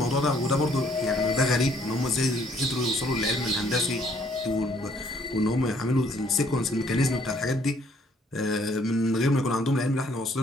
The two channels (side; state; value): both; normal; correlation 0.64